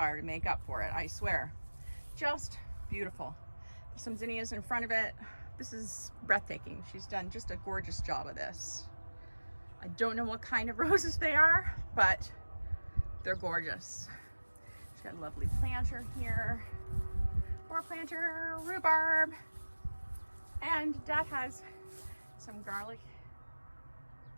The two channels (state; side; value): inverted; both; correlation -1.00